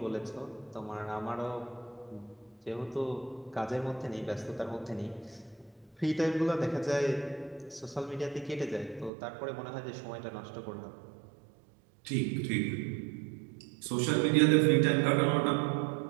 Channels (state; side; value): drops out; left; at 9.1 s